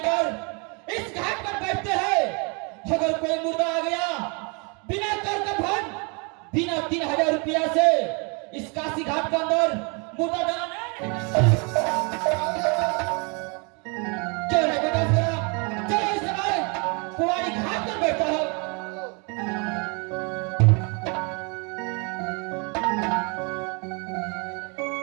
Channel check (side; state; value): left; quieter; 33.1 dB